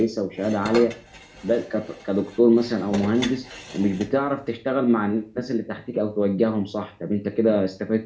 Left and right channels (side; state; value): both; identical; correlation 1.00